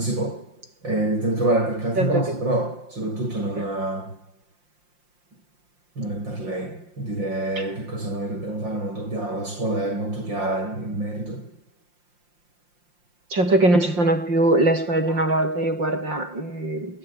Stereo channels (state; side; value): late; left; 5.7 ms